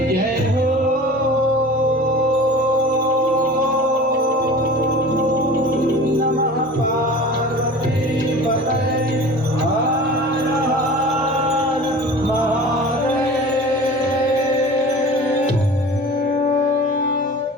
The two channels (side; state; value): both; normal; correlation 0.39